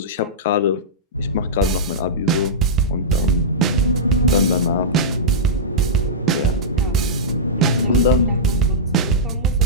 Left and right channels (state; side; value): normal; both; correlation -0.14